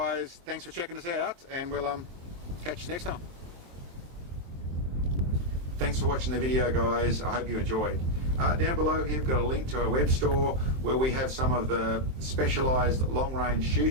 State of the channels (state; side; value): late; left; 23 ms